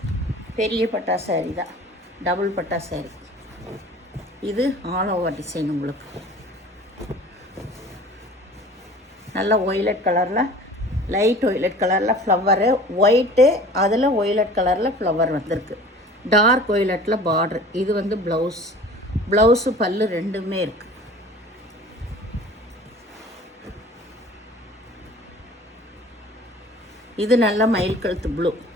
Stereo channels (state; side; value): normal; both; correlation 0.44